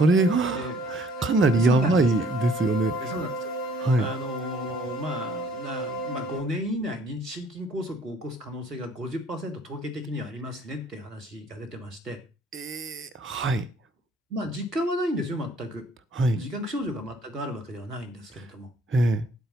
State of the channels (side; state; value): both; normal; correlation 0.58